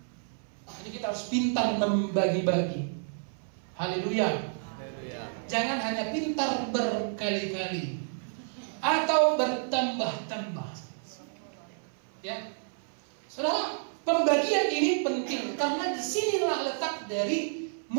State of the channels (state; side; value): silent; left; 58 dB below the other